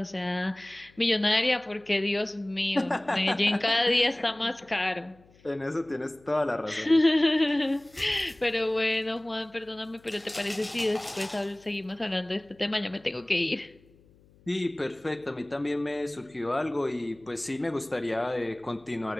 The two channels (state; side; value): noise; left; hum, 29 dB below the sound